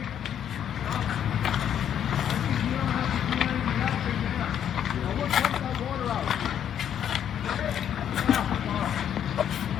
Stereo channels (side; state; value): right; quieter; 9.5 dB